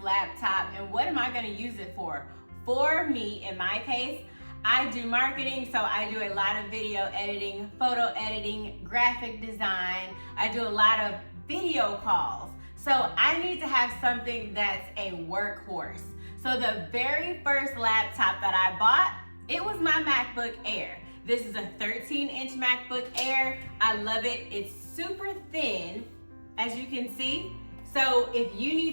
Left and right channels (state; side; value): inverted; both; correlation -1.00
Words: laptop and what am I going to use it for? For me, in my case, I do marketing, so I do a lot of video editing, photo editing, graphic design. I do a lot of video calls. So I need to have something that's a workhorse. So the very first laptop that I bought, it was my MacBook Air. This is a 13-inch MacBook Air. I love it. It's super thin, as you can see. So if you